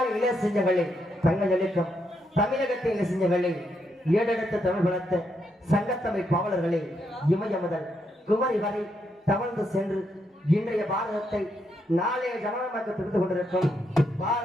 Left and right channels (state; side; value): normal; both; correlation 0.79